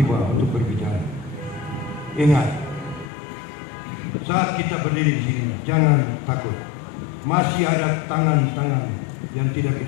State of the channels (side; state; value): right; drops out; at 3.1 s